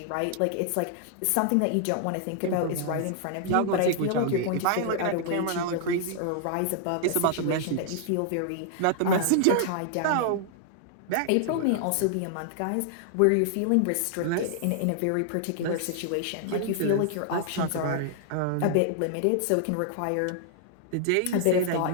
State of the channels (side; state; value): both; different; correlation 0.00